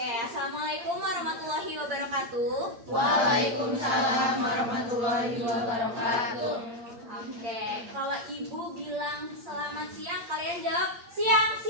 assalamualaikum warahmatullahi wabarakatuh. Waalaikumsalam warahmatullahi wabarakatuh. Oke, kalau ibu bilang selamat siang, kalian jawab siang,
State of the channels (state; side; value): late; left; 8.7 ms